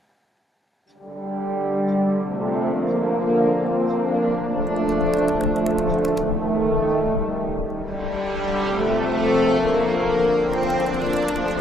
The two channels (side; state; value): both; normal; correlation 0.73